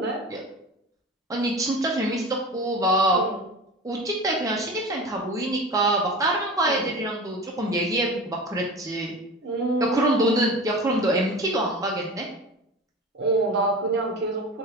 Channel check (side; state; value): both; normal; correlation 0.33